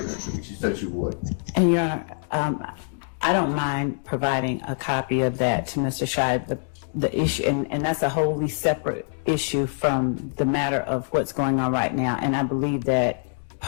it to me. She said she would. And Your Honor, I don't mind providing a copy of that to Mr. Scheib. The issue, and that's a wholly separate issue from the matter of what's going on right now. And I believe that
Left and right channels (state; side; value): silent; right; digital silence